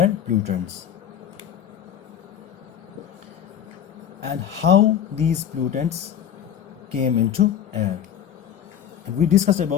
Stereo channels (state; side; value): quieter; right; 9.3 dB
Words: pollutants, and how these pollutants came into air. And we discussed